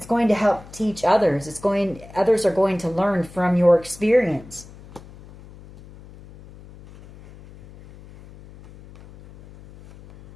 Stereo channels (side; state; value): left; noise; hum, 20 dB below the sound